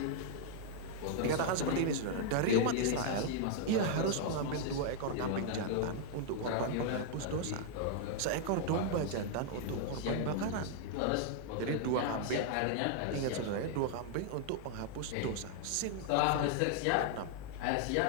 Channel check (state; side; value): different; both; correlation 0.00